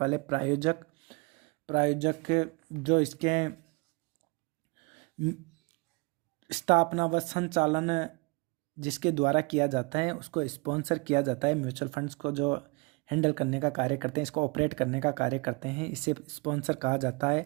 प्रायोजक जो इसके स्थापना व संचालन जिसके द्वारा किया जाता है उसको स्पॉन्सर किया जाता है। म्यूचुअल फंड्स को जो हैंडल करने का कार्य करते हैं, इसको ऑपरेट करने का कार्य करते हैं, इसे स्पॉन्सर कहा जाता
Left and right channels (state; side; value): quieter; left; 29.1 dB